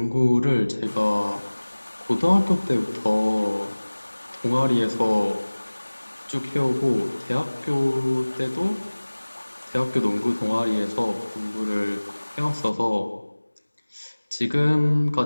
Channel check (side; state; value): both; inverted; correlation -1.00